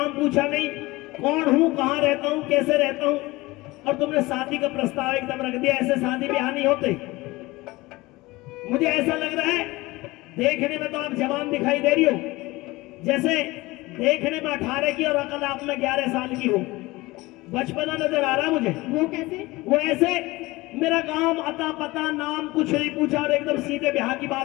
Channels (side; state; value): right; quieter; 20.8 dB